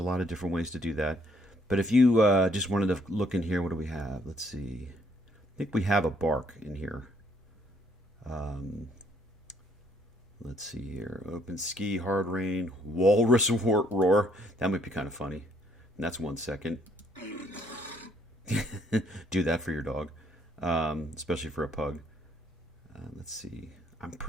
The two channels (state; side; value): normal; both; correlation 0.66